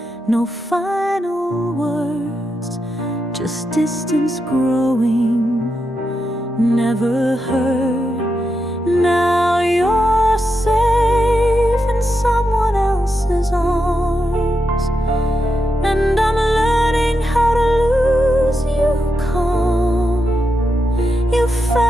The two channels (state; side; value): normal; both; correlation 0.86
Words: no final words, just distance growing, never heard. Now you're safe in someone else's arms, and I'm learning how to lose you calm. You